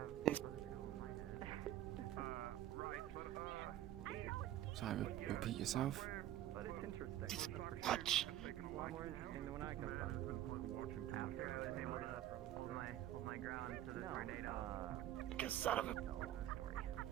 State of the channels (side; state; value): left; quieter; 12.8 dB